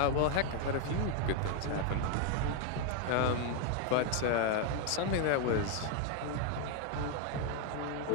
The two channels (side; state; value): both; different; correlation 0.01